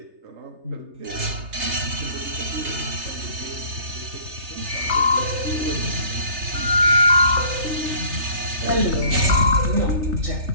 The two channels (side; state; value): left; late; 3.3 ms